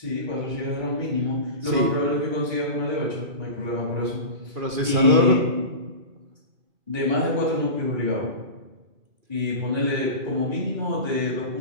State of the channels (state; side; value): late; left; 2.4 ms